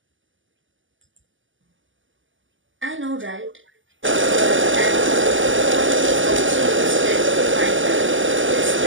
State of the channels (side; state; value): left; late; 0.56 ms